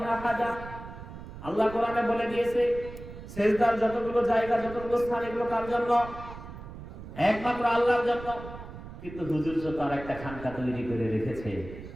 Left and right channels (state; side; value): noise; right; rumble, 13 dB below the sound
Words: আহাদা, আল্লাহ কোরআনে বলে দিয়েছে সিজদার যতগুলো জায়গা, যতগুলো স্থান, এগুলো কার জন্য? একমাত্র আল্লাহর জন্য। কিন্তু হুজুর তো তার একটা খানকা তৈরি করে রেখেছে,